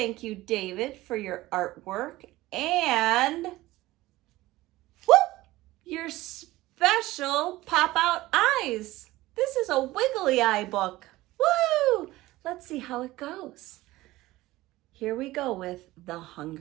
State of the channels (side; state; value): left; quieter; 17.8 dB